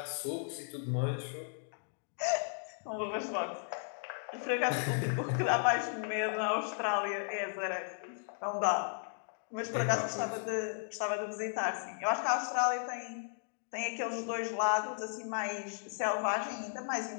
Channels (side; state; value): right; silent; digital silence